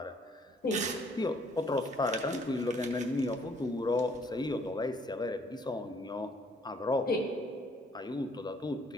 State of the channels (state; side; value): normal; both; correlation 0.63